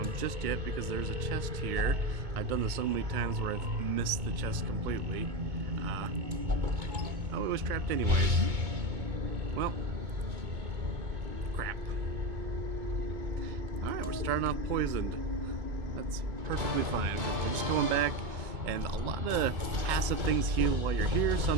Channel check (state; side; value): late; left; 2.2 ms